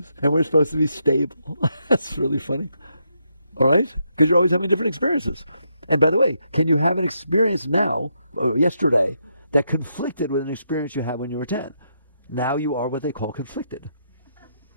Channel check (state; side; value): inverted; both; correlation -0.79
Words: And we're supposed to be stable. That's really funny. All right? Because you're always having different experiences. And by the way, can you have an experience now, or yesterday, that conflicted with an experience you had when you were 10? Now you are what they call conflicted.